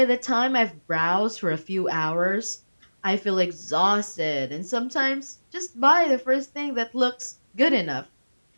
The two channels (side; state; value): both; inverted; correlation -1.00